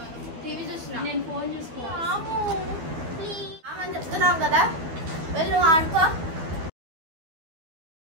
టీవీ చూస్తున్నా. నేను ఫోన్ చూసుకోమని చెప్తున్నావు కదా, వెళ్ళు ఆడుకో.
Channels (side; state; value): left; late; 12 ms